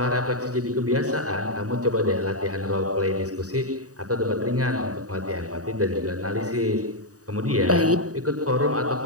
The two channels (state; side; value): late; left; 0.66 ms